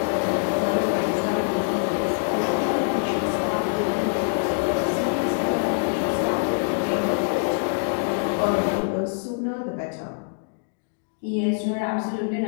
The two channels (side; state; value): right; silent; digital silence